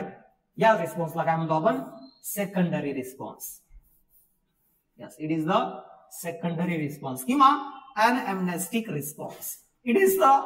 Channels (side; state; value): both; identical; correlation 1.00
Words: या रिस्पॉन्सला काय म्हणतो आपण, secondary response. Yes, it is the secondary response किंवा anamnestic response. It is the